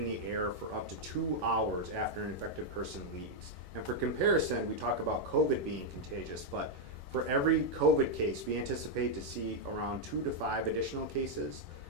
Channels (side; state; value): left; late; 11 ms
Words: the air for up to 2 hours after an infected person leaves. And for comparison, we talk about COVID being contagious, but for every COVID case, we anticipate to see around 2 to 5 additional cases.